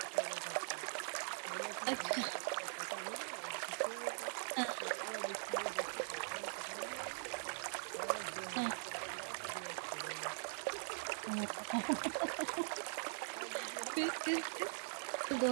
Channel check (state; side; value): silent; left; digital silence